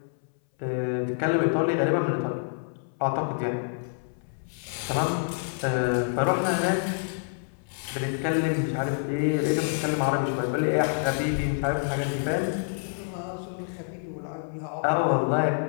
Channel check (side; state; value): right; silent; 60 dB below the other